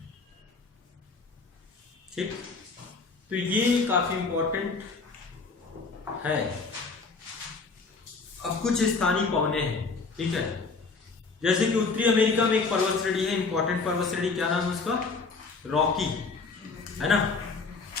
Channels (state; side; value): quieter; right; 4.3 dB